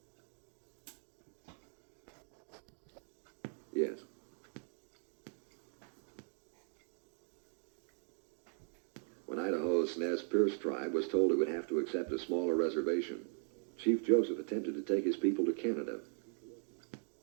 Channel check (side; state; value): left; silent; 51 dB below the other